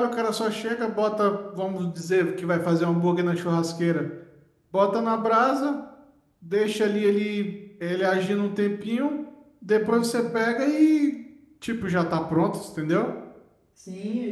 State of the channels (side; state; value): both; identical; correlation 1.00